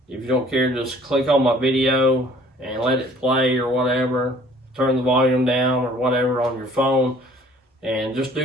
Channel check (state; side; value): normal; both; correlation 0.54